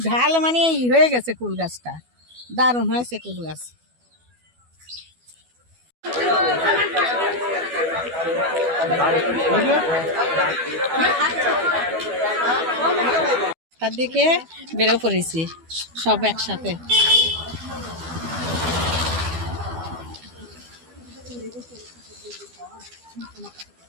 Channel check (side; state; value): left; late; 12 ms